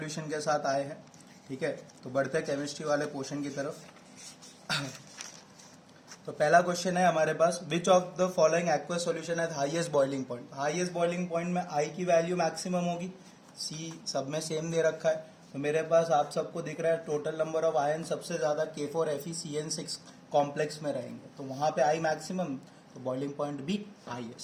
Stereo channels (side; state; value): both; identical; correlation 1.00